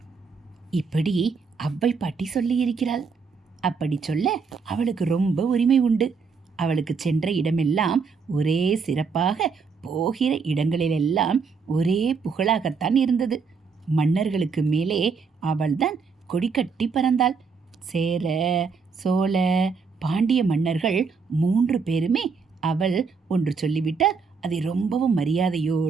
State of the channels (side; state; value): left; quieter; 5.2 dB